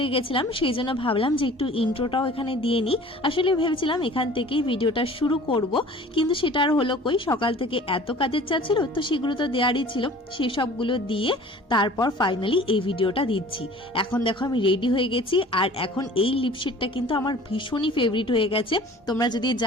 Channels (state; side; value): normal; both; correlation 0.46